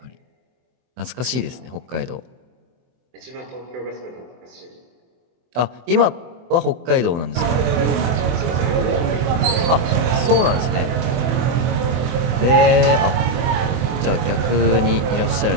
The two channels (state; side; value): late; left; 24 ms